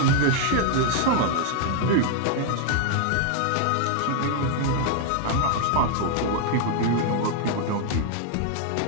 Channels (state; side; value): different; both; correlation 0.00